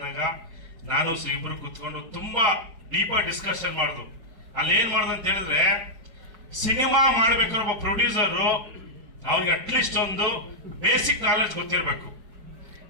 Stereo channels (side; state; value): left; late; 4.8 ms